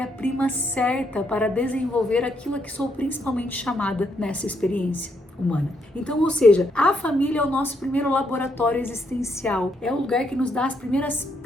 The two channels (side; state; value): both; normal; correlation 0.75